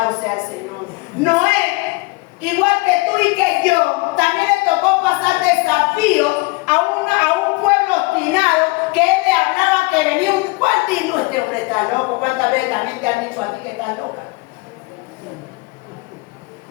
sea el Señor. Noé, igual que tú y que yo, también le tocó pasar desafíos a un pueblo obstinado que él le hablaba que venía un... ¿Cuál dijo este hombre está loco? ¿Cuántas veces también te han dicho a ti que estás loca?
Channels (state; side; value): quieter; right; 25.2 dB